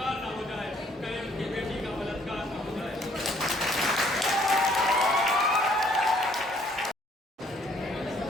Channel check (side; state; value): both; normal; correlation 0.63